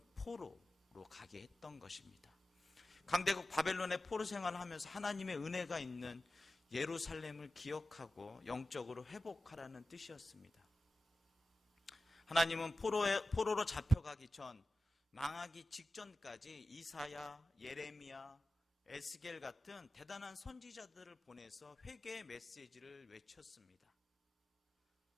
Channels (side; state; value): both; normal; correlation 0.94